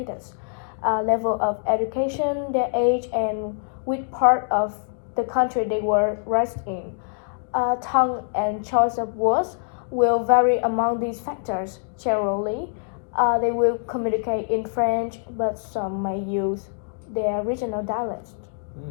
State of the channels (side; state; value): right; silent; digital silence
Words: level of education, their age, and which part of the country they were raised in. Tongue and choice of words will vary among these factors. Generally, they will communicate in French, but some may use their regional dialects.